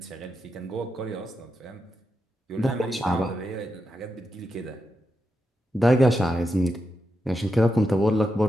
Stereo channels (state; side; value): normal; both; correlation 0.86